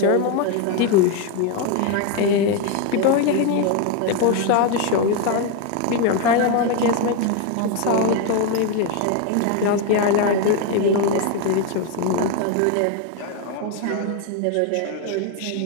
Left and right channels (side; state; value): both; different; correlation 0.01